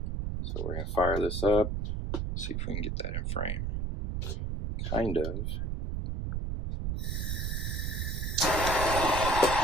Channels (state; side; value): noise; right; rumble, 2 dB below the sound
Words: So we're going to fire this up, see if we can get that in frame. Kind of.